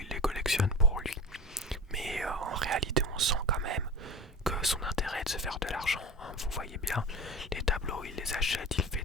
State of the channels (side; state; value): both; normal; correlation 0.30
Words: les collectionne pour lui. Mais en réalité, on sent quand même que son intérêt est de se faire de l'argent, hein. Vous voyez bien, les tableaux, il les achète, il fait